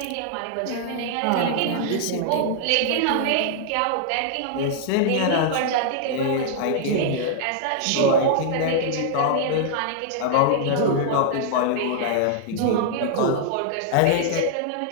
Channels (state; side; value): different; both; correlation -0.01